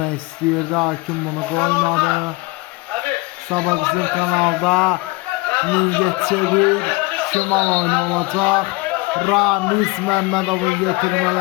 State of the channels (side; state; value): right; quieter; 24.5 dB